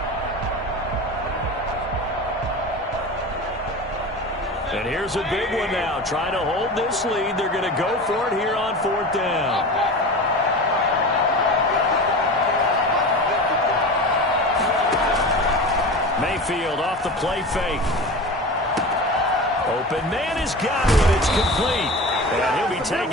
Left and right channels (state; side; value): normal; both; correlation 0.31